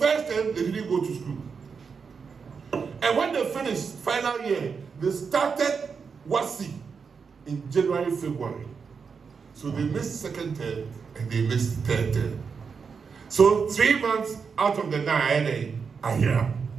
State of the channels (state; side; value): quieter; left; 5.7 dB